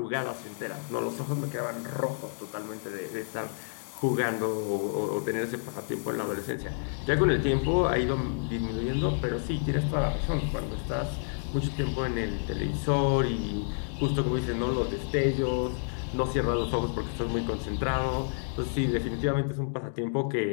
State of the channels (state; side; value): silent; right; digital silence